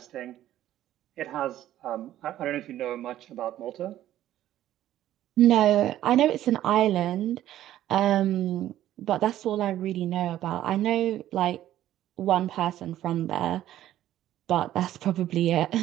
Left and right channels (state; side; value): quieter; left; 12.9 dB